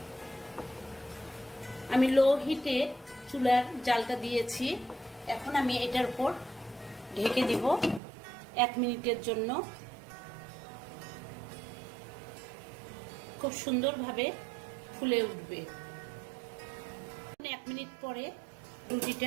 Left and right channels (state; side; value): drops out; left; at 8.0 s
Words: আমি লো হিটে চুলার জালটা দিয়েছি। এখন আমি এটার উপর ঢেকে দিব 1 মিনিটের জন্য। খুব সুন্দরভাবে ফুলে উঠবে। 1 মিনিট পরে